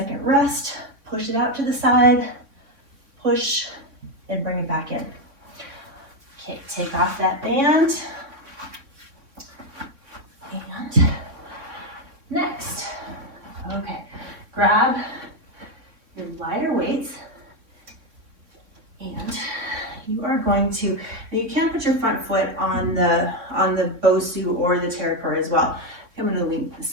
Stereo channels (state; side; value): late; left; 3.6 ms